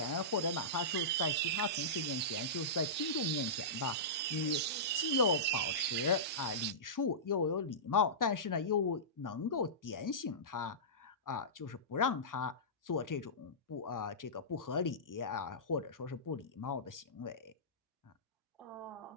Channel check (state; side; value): normal; both; correlation -0.20